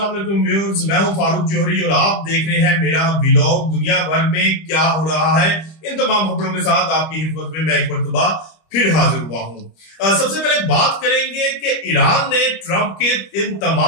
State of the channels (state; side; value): late; right; 25 ms